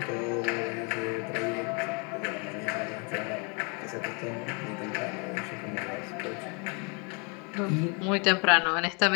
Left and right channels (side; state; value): right; quieter; 33.4 dB